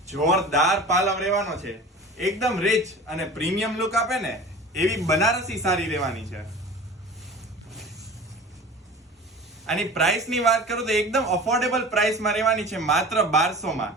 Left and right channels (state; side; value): normal; both; correlation 0.38